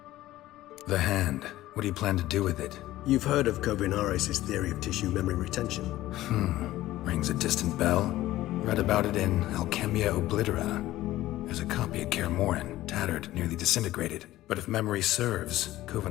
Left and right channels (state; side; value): quieter; right; 15.6 dB